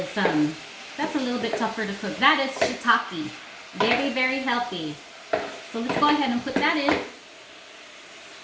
that's a little bit tougher to cook. That is shiitake. Very, very healthy. So let's go ahead and put that in.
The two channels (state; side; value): identical; both; correlation 1.00